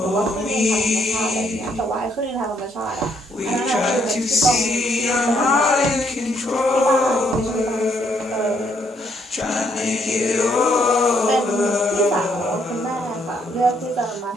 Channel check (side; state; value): both; normal; correlation 0.72